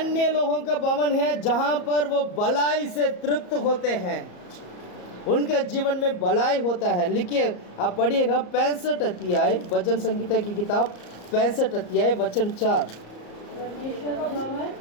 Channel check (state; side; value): late; right; 34 ms